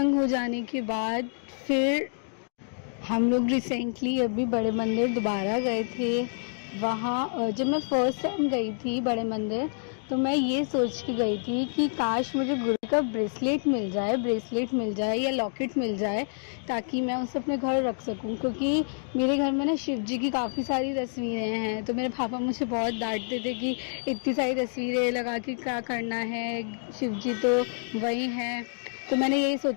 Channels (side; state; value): right; silent; digital silence